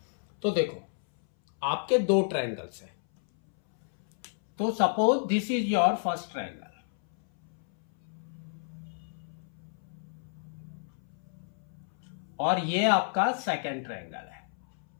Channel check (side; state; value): right; silent; 57 dB below the other